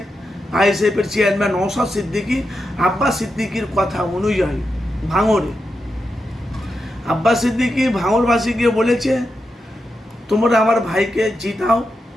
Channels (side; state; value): both; normal; correlation 0.87